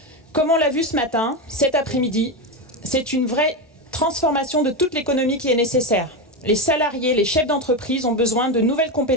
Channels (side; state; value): both; normal; correlation 0.14